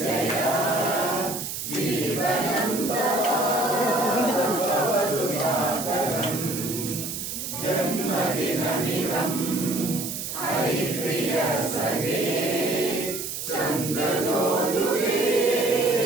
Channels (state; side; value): noise; right; hiss, 6 dB below the sound